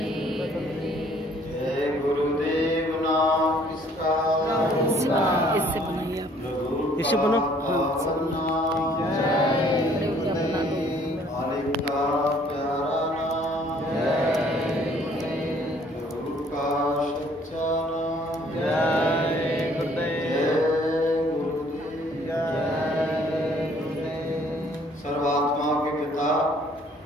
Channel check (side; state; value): both; normal; correlation 0.60